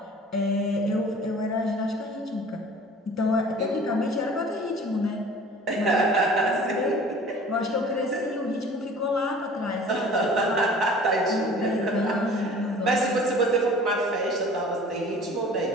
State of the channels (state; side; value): normal; both; correlation 0.46